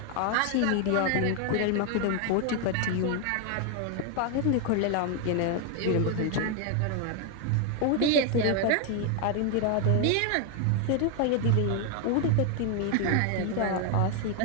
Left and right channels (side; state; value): both; different; correlation 0.00